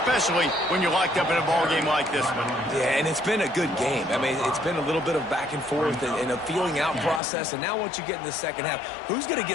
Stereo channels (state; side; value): drops out; right; at 7.2 s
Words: when you're locked up in a ball game like this one. Yeah, and it's been a good game. I mean, it's been a little bit of back and forth and a feeling out process. And now once you get in the second half, who's going to